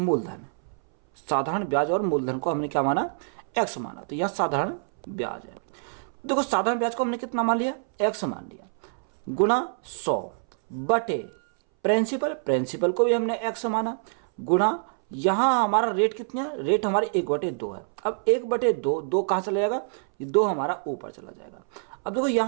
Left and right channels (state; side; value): silent; left; 61 dB below the other